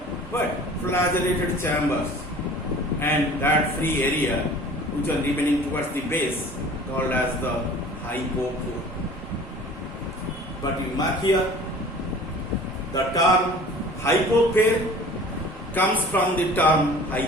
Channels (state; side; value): normal; both; correlation 0.45